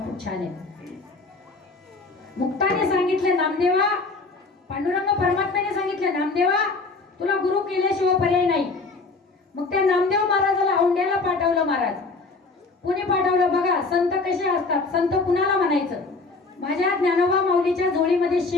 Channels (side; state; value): right; quieter; 3.8 dB